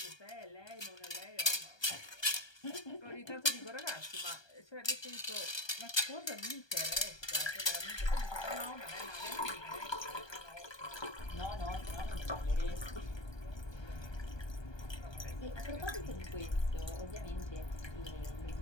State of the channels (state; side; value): late; right; 1.2 ms